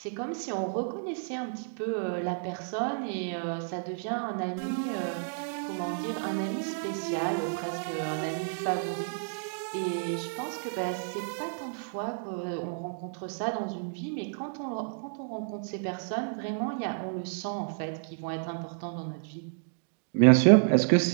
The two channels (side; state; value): left; silent; digital silence